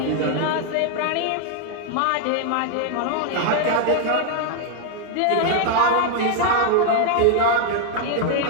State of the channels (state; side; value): different; both; correlation -0.01